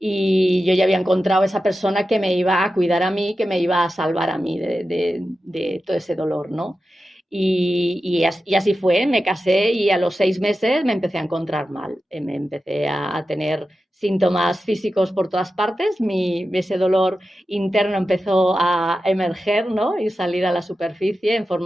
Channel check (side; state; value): both; normal; correlation 0.92